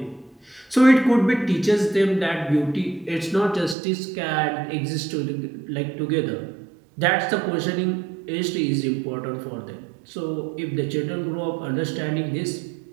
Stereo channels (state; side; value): drops out; left; at 3.8 s